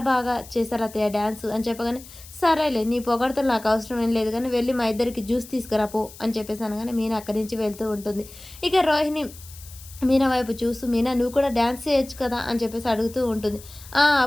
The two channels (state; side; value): noise; left; hiss, 18 dB below the sound